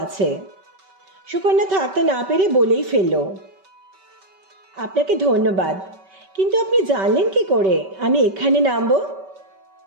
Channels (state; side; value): late; left; 5.2 ms